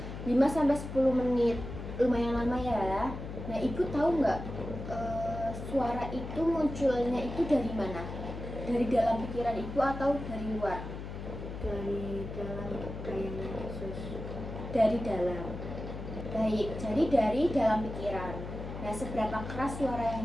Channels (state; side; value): noise; left; hum, 8 dB below the sound